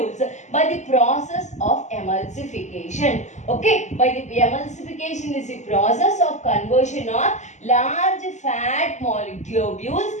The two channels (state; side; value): late; right; 0.34 ms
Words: by the process of emulsification. Okay, by the emulsification is the process of conversion of large fat globules